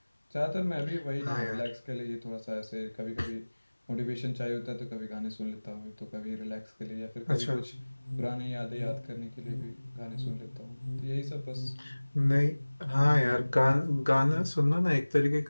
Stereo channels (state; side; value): inverted; both; correlation -1.00